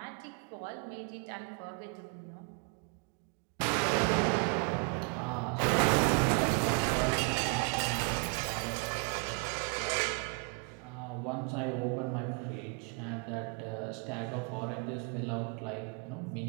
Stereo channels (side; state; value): left; quieter; 35.3 dB